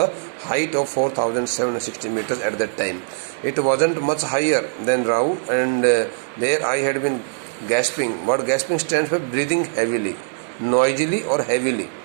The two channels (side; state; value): left; silent; digital silence